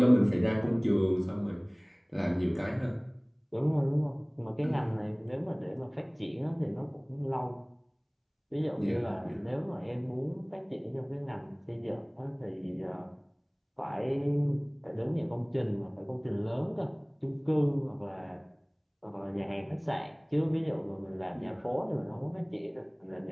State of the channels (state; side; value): identical; both; correlation 1.00